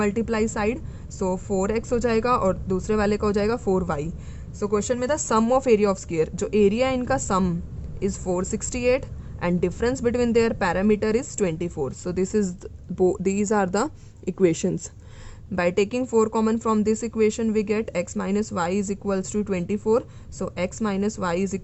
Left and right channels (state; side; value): identical; both; correlation 1.00